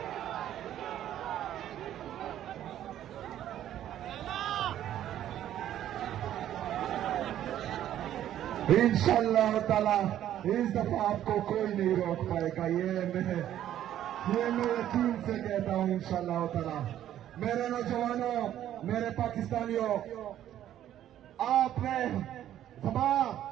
इंशाअल्लाह ताला इस दफा आपको कोई नहीं रोक पाएगा। ये मैं यकीन से कहता हूं इंशाअल्लाह ताला। मेरे नौजवानों, मेरे पाकिस्तानियों, आपने सभा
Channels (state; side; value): quieter; left; 11.7 dB